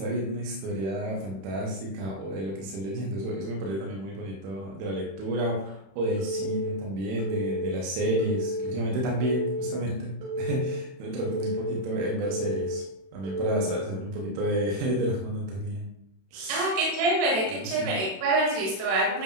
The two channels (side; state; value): left; late; 31 ms